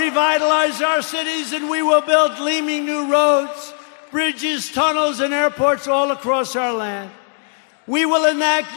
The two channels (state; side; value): silent; right; digital silence